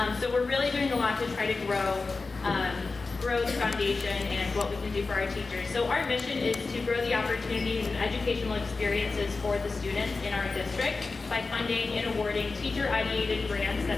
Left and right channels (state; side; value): quieter; right; 3.9 dB